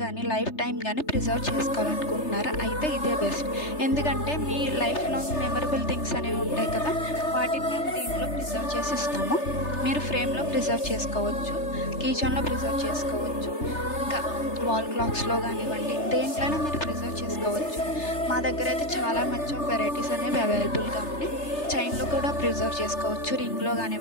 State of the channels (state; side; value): late; right; 3.3 ms